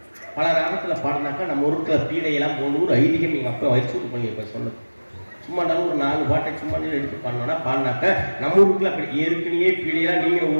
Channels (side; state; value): both; inverted; correlation -1.00